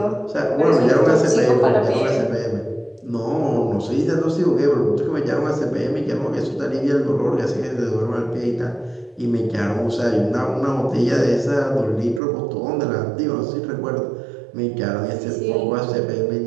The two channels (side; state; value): left; drops out; at 12.2 s